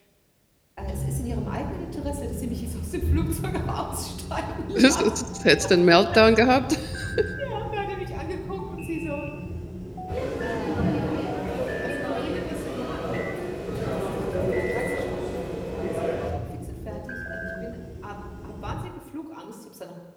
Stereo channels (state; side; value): identical; both; correlation 1.00